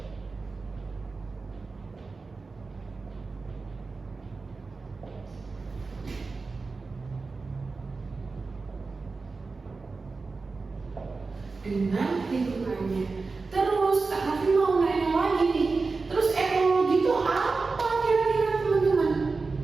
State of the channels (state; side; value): quieter; left; 4.1 dB